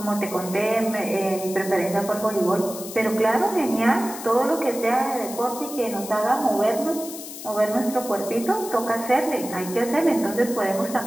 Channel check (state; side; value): noise; left; hiss, 11 dB below the sound